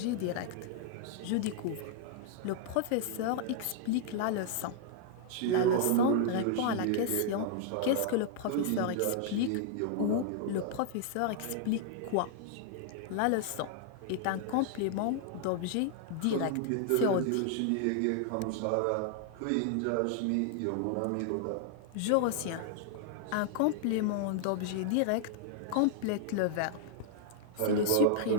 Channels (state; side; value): different; both; correlation -0.01